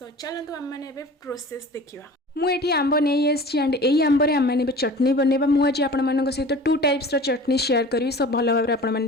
चलतु आम मैंने प्रोसेस देखा। मुझे आंब नहीं आसी एंड यही आंबर आम मैंने चटनी बनवा मुझे आपण सहित टू टाइप्स चटनी शेयर करी सब भल भाव आपने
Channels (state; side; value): normal; both; correlation 0.40